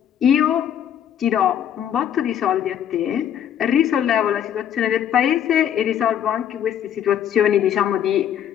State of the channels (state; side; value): quieter; right; 9.8 dB